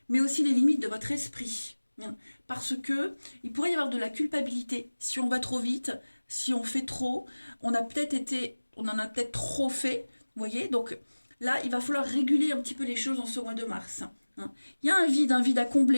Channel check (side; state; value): both; inverted; correlation -1.00